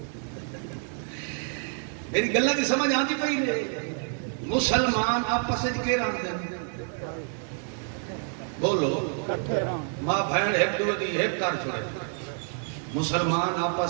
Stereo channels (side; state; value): left; silent; 55 dB below the other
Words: میری گلاں دی سمجھ آندی پئی نے مسلمان آپس وچ کے رہندے بولو ماں بہن ایک دو دی ایک کر چھوڑے مسلمان